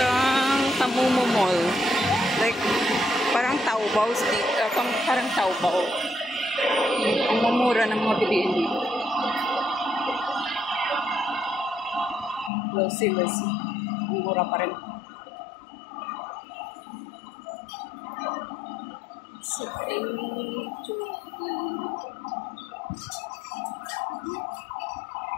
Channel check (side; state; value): right; drops out; at 12.5 s